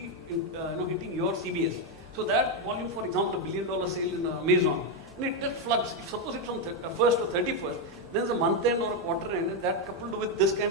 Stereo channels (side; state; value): both; normal; correlation 0.04